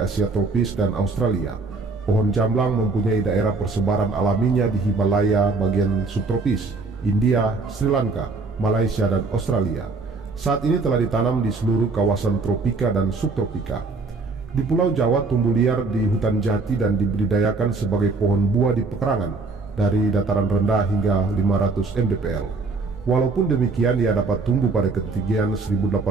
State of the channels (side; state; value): left; quieter; 3.8 dB